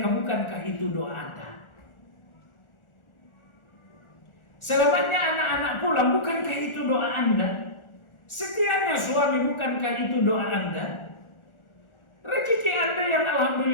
bukankah itu doa Anda? Selamatnya anak-anak pulang, bukankah itu doa Anda? Setiapnya suami, bukankah itu doa Anda? Rezeki Anda yang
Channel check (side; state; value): right; late; 1.4 ms